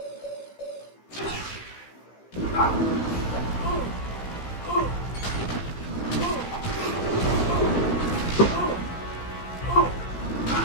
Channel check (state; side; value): late; right; 15 ms